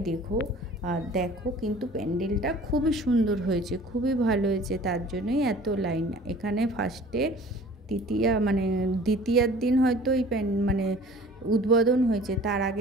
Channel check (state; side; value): normal; both; correlation 0.47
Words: দেখো। আর দেখো কিন্তু প্যান্ডেলটা খুবই সুন্দর হয়েছে, খুবই ভালো হয়েছে, তার জন্যই এত লাইন। এখানে ফার্স্টে দ্বিতীয়ার দিন হয়তো এই উদ্বোধন হয়েছে। তার